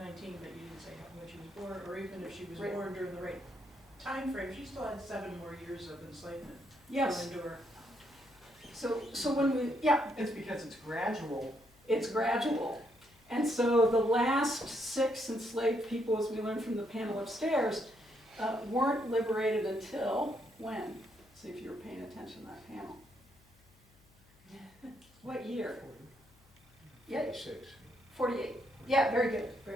but you didn't say when she was born, or even if she was Right. born during the right time frame, she still had 7 more years of enslavement Yes, to endure. so when we, yeah, It's because it's gradual. it's gradual. And so the last 6 enslaved people, as we learned from the panel upstairs, weren't liberated until when? See if you were paying attention to that panel. What year? Yeah, 6. 48. Yeah, very good,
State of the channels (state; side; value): noise; left; hum, 29 dB below the sound